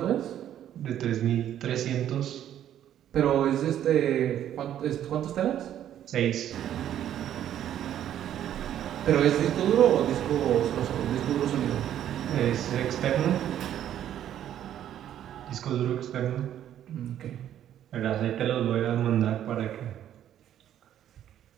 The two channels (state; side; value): quieter; left; 10.9 dB